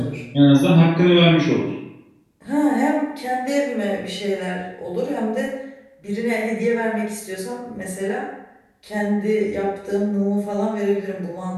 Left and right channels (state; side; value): identical; both; correlation 1.00